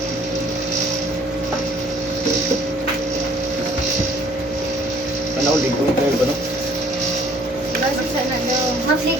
Ano, lingkod kayo ba, no? Lagi sana daw.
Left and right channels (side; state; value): both; normal; correlation 0.58